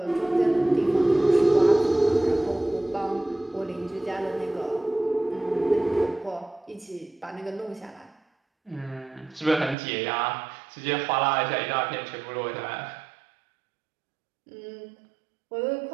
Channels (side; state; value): left; drops out; at 9.8 s